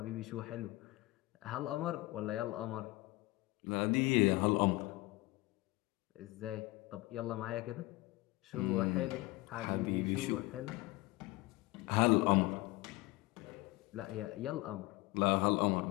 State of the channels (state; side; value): quieter; right; 21.2 dB